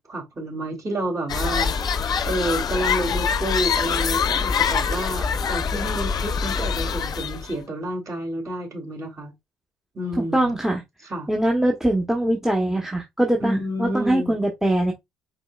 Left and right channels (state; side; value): normal; both; correlation 0.74